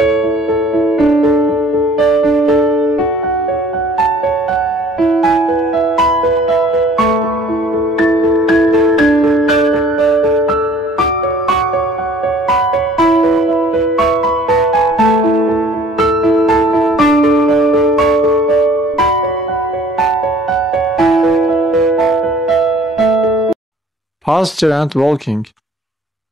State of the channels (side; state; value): both; normal; correlation 0.54